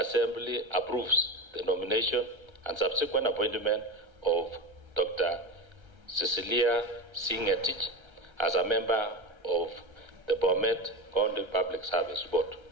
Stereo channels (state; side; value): late; left; 1.3 ms